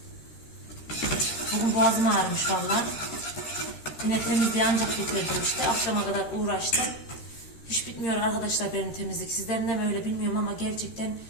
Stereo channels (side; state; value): right; late; 13 ms